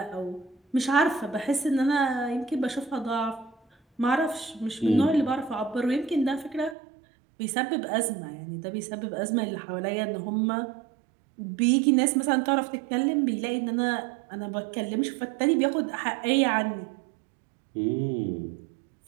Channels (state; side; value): drops out; left; at 6.8 s